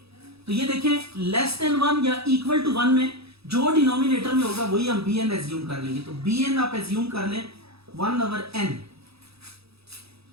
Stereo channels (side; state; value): left; late; 0.77 ms